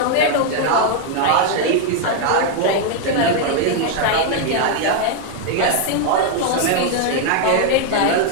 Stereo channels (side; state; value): both; different; correlation 0.00